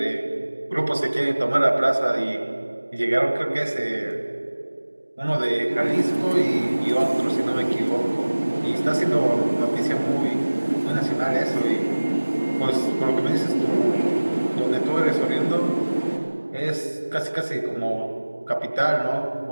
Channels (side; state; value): both; inverted; correlation -1.00